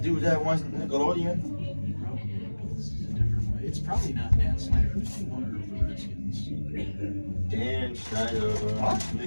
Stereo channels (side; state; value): both; inverted; correlation -1.00